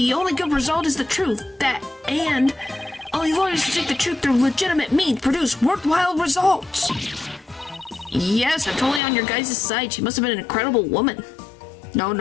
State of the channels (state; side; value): drops out; right; at 9.0 s